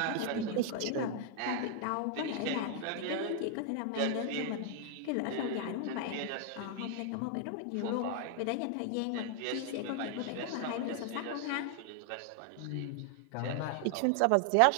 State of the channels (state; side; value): different; both; correlation 0.00